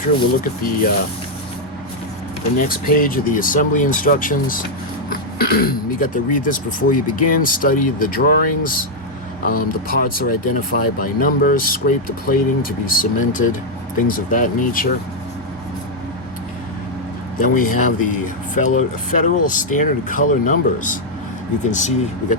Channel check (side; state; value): both; normal; correlation -0.01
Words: we'll look at the next page of the assembly instructions. You got to read this before you begin, study the drawings. The parts are identified by numbers, scrape the plating to be cemented, things of that nature. Then we have the Federal Standard Color numbers. You can see we